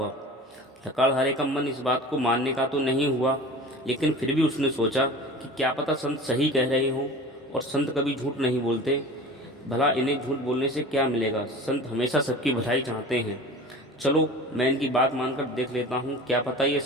लकड़हारे का मन इस बात को मानने का तो नहीं हुआ, लेकिन फिर भी उसने सोचा कि क्या पता संत सही कह रहे हों, और संत कभी झूठ नहीं बोलते। भला इन्हें झूठ बोलने से क्या मिलेगा, संत हमेशा सबकी भलाई चाहते हैं। चलो मैं इनकी बात मानकर देख लेता हूँ, क्या पता ये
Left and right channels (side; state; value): both; normal; correlation 0.37